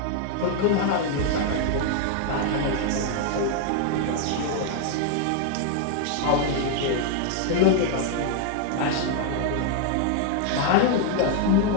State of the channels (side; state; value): both; different; correlation 0.00